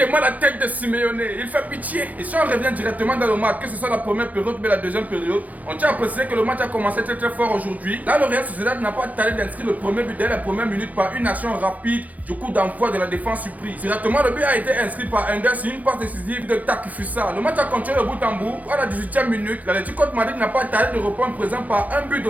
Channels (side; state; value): left; late; 0.077 ms